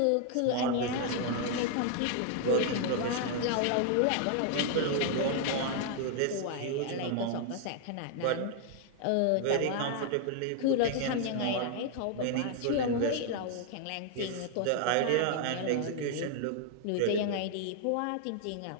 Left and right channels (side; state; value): both; different; correlation 0.00